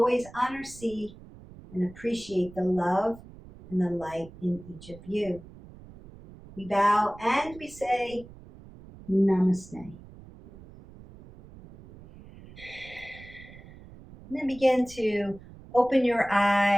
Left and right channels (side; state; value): right; noise; rumble, 19 dB below the sound